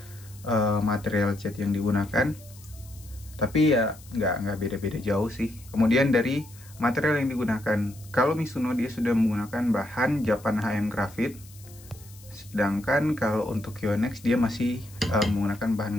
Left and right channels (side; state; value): left; noise; hiss, 22 dB below the sound